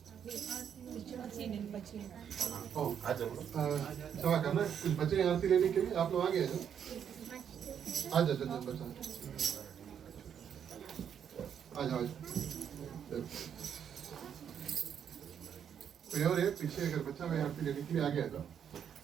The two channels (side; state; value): left; quieter; 8.4 dB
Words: सवा करना कुछ बच्चे आरती लेने के लिए आप लोग आ गए हैं आ जाओ जल्दी बच्चा आ जाओ कोई और है पीछे अगर बच्चा मैं आरती लेने के लिए आ गया था